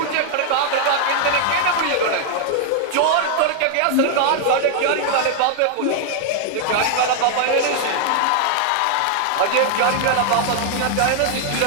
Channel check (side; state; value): both; different; correlation 0.00